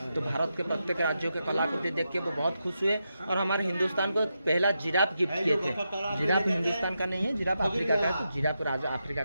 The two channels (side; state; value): both; inverted; correlation -0.86